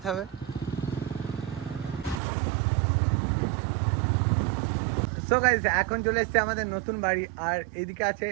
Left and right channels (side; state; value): left; drops out; at 2.1 s